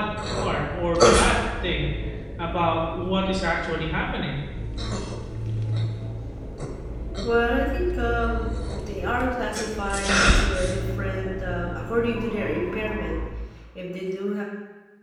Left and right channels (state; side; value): identical; both; correlation 1.00